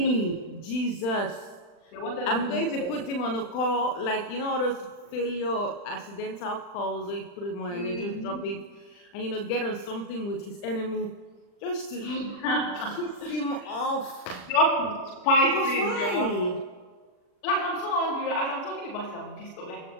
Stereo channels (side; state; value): right; late; 40 ms